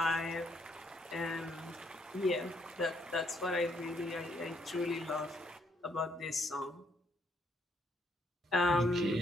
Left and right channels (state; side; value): normal; both; correlation 0.71